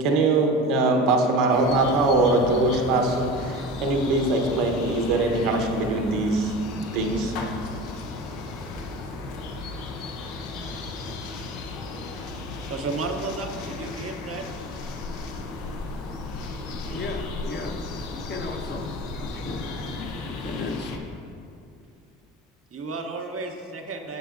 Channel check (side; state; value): both; normal; correlation 0.32